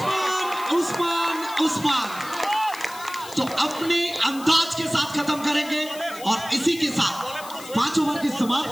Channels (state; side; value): noise; left; hiss, 15 dB below the sound